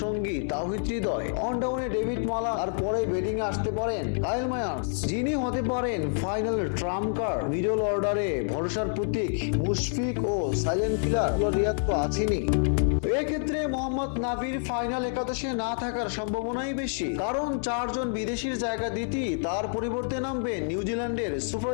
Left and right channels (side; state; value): right; silent; 60 dB below the other